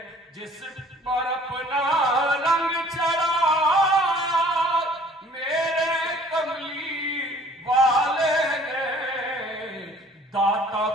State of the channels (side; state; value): both; normal; correlation 0.54